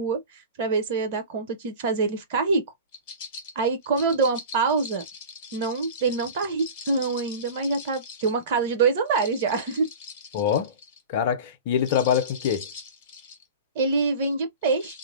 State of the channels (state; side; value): inverted; both; correlation -0.35